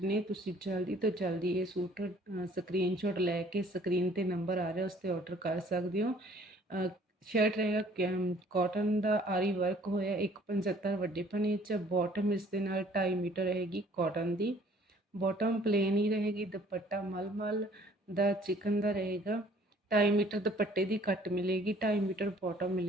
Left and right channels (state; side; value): normal; both; correlation 0.56